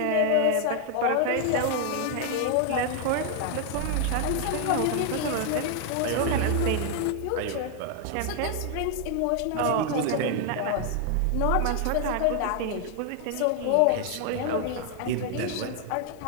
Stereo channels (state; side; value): different; both; correlation 0.00